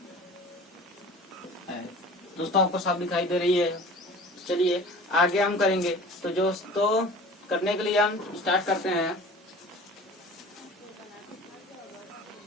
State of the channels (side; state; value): both; normal; correlation 0.42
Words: है। दोस्तों आपको सब दिखाई दे रही है। चलिए आगे हम करेंगे। तो दोस्तों करने के लिए हम स्टार्ट करते हैं।